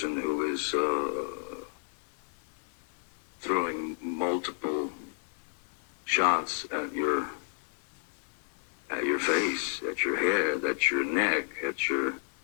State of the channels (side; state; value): right; silent; digital silence